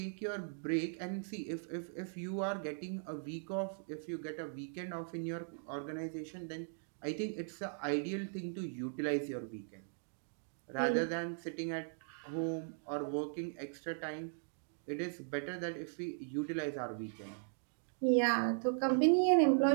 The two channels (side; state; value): left; silent; digital silence